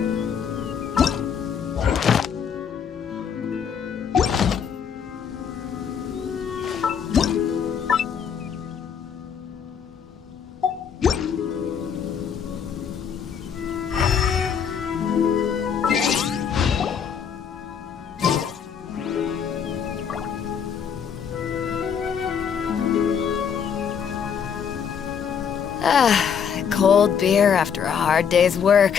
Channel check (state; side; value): quieter; right; 7.4 dB